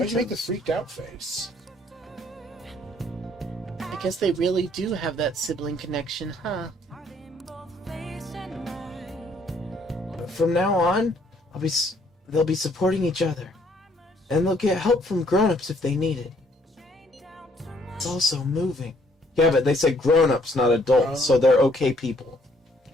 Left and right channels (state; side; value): normal; both; correlation 0.65